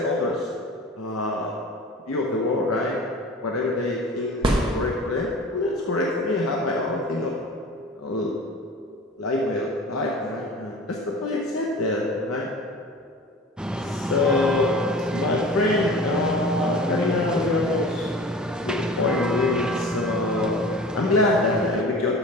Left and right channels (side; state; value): both; normal; correlation 0.38